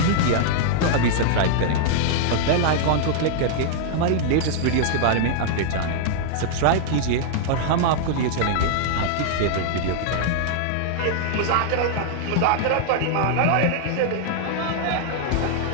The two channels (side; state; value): both; different; correlation -0.01